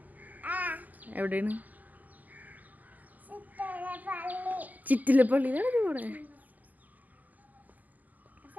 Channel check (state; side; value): late; left; 0.080 ms